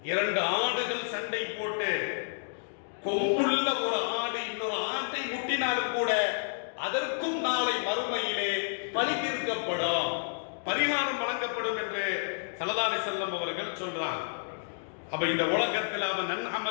2 ஆடுகள் சண்டை போட்டு கொம்புள்ள ஒரு ஆடு இன்னொரு ஆட்டை முட்டினாலும் கூட அதற்கும் நாளை மறுமையிலே பழி தீர்க்கப்படும், பரிகாரம் வழங்கப்படும் என்று ஸல்லல்லாஹு அலைஹி வஸல்லம் அவர்கள் சொல்றாங்க. அப்ப இந்த உலகத்தில் அவன்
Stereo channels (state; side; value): silent; right; digital silence